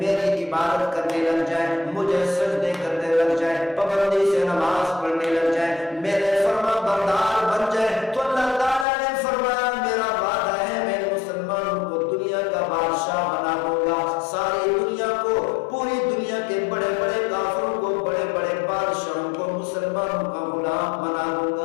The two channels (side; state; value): right; drops out; at 8.8 s